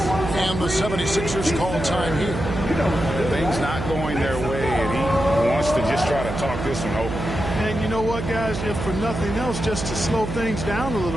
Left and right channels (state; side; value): noise; right; hum, 5 dB below the sound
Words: And the 76ers call time here. Things not going their way, and he wants to just try to talk this one over. And you know what, guys? If for nothing else, just to slow things down a